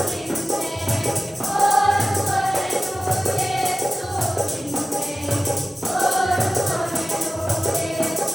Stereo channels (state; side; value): normal; both; correlation 0.96